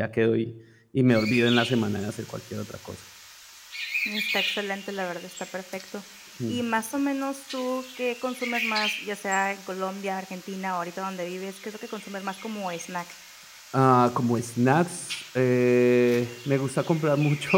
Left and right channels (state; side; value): identical; both; correlation 1.00